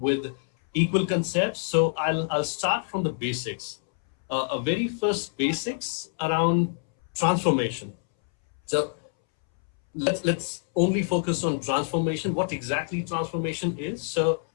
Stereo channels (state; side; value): silent; right; 61 dB below the other